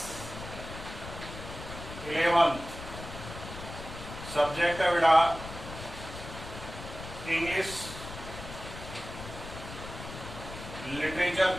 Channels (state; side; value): noise; left; rumble, 11 dB below the sound